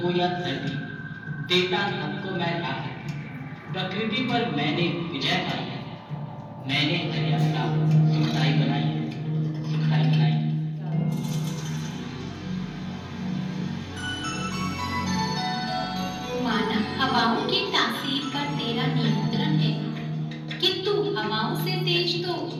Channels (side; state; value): both; identical; correlation 1.00